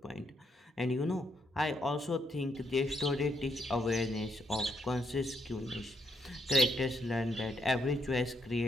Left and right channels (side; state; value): both; normal; correlation 0.77